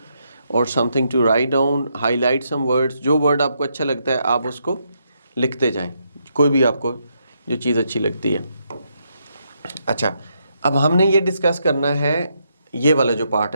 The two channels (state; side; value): inverted; both; correlation -0.78